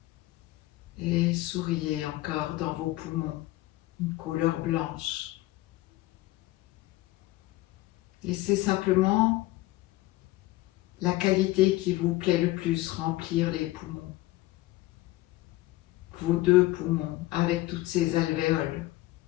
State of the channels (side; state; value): right; quieter; 18.1 dB